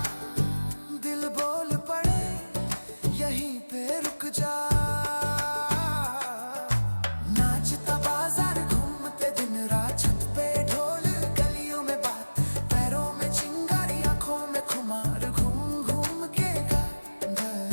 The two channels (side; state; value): both; inverted; correlation -1.00